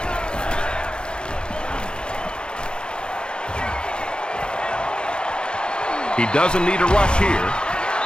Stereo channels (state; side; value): late; right; 0.050 ms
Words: He doesn't need a rush here.